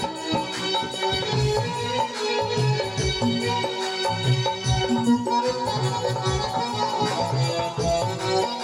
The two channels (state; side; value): identical; both; correlation 1.00